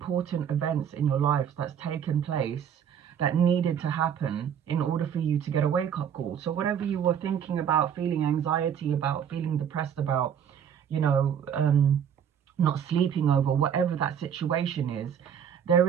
events in your life that's taken place, that needed to happen in order for you to get a wake-up call. So whatever you were thinking about, feeling anxiety about, feeling depressed about, you know, not sleeping over, whatever that situation is, there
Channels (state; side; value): quieter; left; 8.5 dB